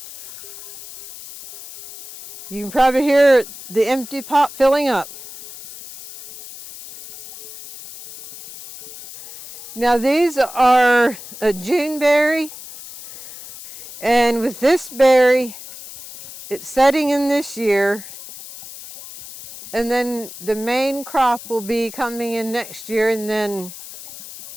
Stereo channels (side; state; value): left; noise; hiss, 15 dB below the sound